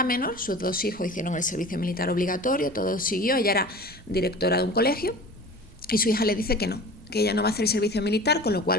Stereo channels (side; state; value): right; noise; rumble, 23 dB below the sound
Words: menor, sus dos hijos hicieron el servicio militar obligatorio, todo siguió, ella era directora de un colegio, y su hija le dice que no, que ella no va a hacer el servicio militar, con lo